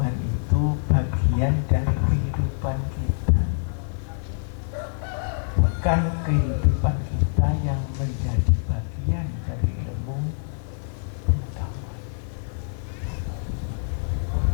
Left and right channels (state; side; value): silent; right; digital silence